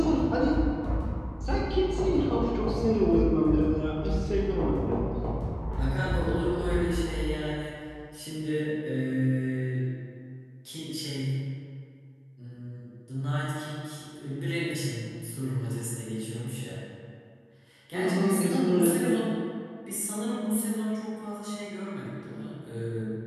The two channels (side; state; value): both; identical; correlation 1.00